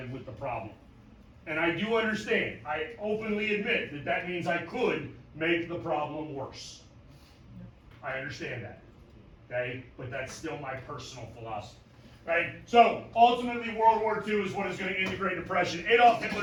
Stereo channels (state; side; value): identical; both; correlation 1.00